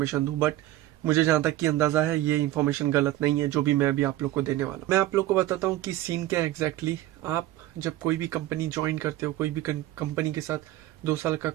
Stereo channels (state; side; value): quieter; left; 15.1 dB